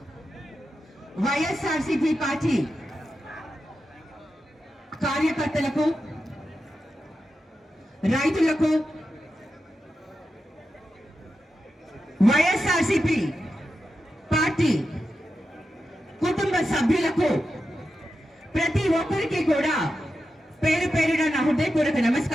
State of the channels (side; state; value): both; normal; correlation 0.89